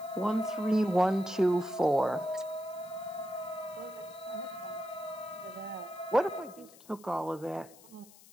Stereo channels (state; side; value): noise; left; hiss, 22 dB below the sound